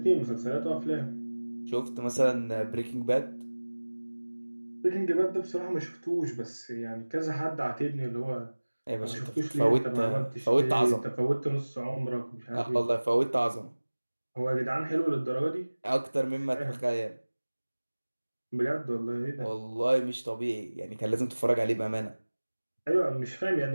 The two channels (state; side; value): inverted; both; correlation -1.00